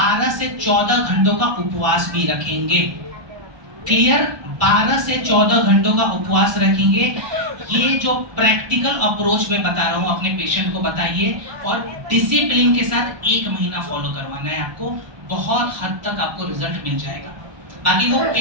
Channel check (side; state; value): left; late; 1.2 ms